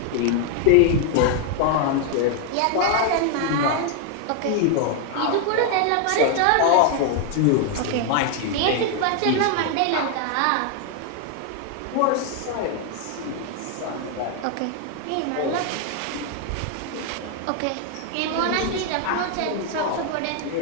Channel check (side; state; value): both; different; correlation 0.01